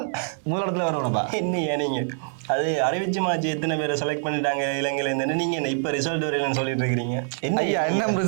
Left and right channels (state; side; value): silent; left; 62 dB below the other